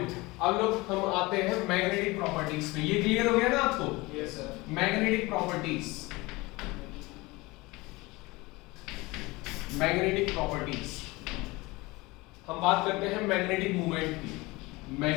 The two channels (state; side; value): quieter; right; 22.6 dB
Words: अब लोग हम आते हैं मैग्नेटिक प्रॉपर्टीज पे। ये क्लियर हो गया ना आपको? Yes sir. Magnetic properties, magnetic properties हम बात करते हैं मैग्नेटिक मूवमेंट की।